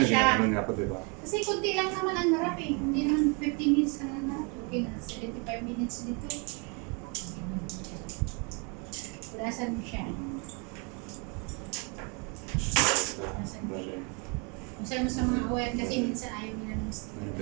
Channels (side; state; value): left; quieter; 33.6 dB